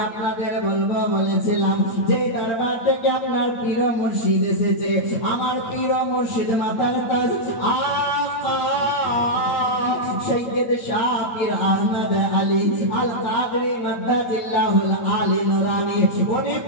আপনাদের বলবো বলেছিলাম যে দরবার থেকে আপনার পীর মুর্শিদ এসেছে, আমার পীর মুর্শিদ মাতার তাজ আকা সৈয়দ শাহ পীর আহমদ আলী আল কাদরি মাদ্দাজিল্লাহুল আলী নুরানি। উনি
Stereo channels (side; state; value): right; late; 8.8 ms